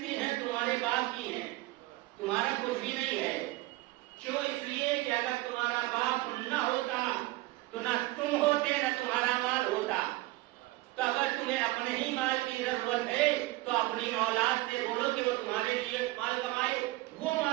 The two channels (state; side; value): quieter; left; 19.4 dB